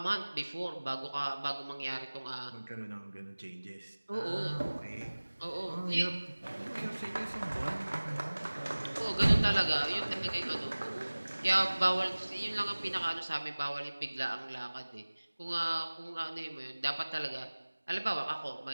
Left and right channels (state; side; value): inverted; both; correlation -1.00